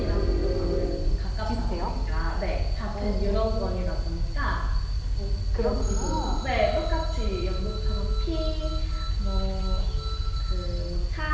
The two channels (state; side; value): identical; both; correlation 1.00